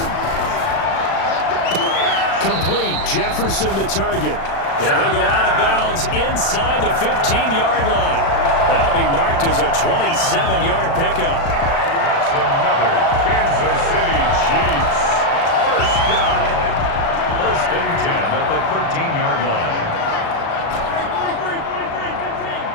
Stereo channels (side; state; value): right; late; 36 ms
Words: Complete. Jefferson the target. And he'll go out of bounds inside the 15-yard line. That'll be marked as a 27-yard pickup. That's another Kansas City Chiefs. First down. First and 10 at the 13-yard line.